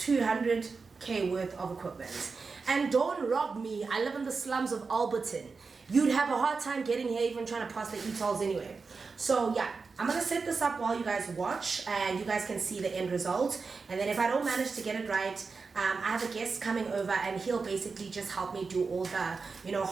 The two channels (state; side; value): quieter; left; 4.6 dB